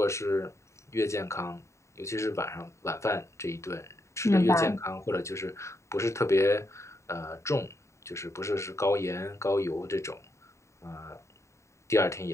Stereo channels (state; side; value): late; right; 0.14 ms